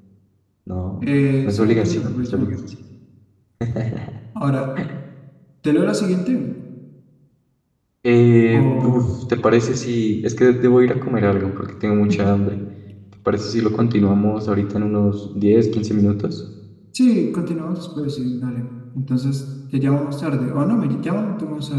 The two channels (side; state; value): both; identical; correlation 1.00